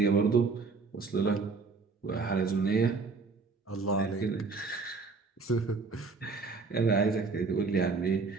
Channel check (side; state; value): left; quieter; 4.3 dB